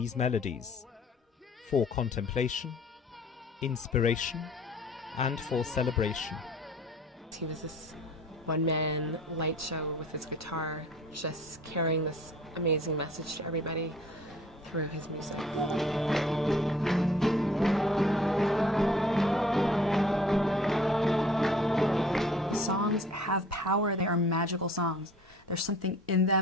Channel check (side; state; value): both; normal; correlation 0.51